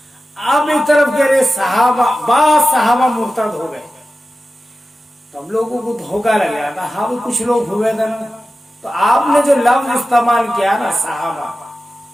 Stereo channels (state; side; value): normal; both; correlation 0.94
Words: आप एक तरफ कह रहे सहाबा मुर्तद हो गए, तो हम लोगों को धोखा लग गया था। हाँ भी कुछ लोग हुए थे ना, तो आपने जो लफ्ज इस्तेमाल किया ना सहाबा,